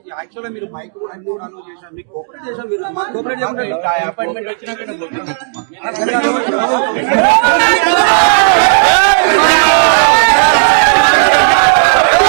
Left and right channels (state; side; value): silent; left; digital silence